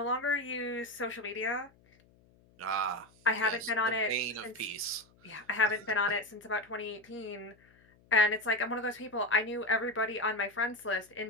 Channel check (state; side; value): noise; left; hum, 30 dB below the sound